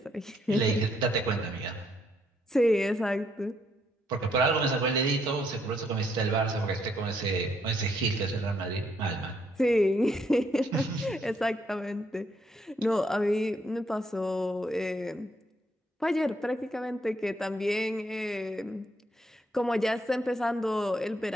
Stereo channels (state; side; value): normal; both; correlation 0.73